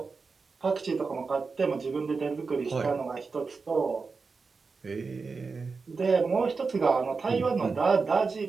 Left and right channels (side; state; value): left; quieter; 4.6 dB